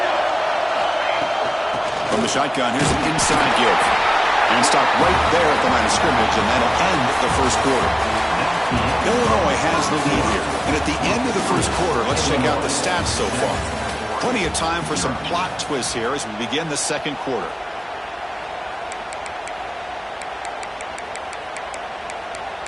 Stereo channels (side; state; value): both; identical; correlation 1.00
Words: From the shotgun, here's an inside give. And stop right there at the line of scrimmage, and that'll end the first quarter. Illinois has the lead here. And at the end of the first quarter, let's check out the stats so far. Plenty of time for some plot twists here as we begin the second quarter.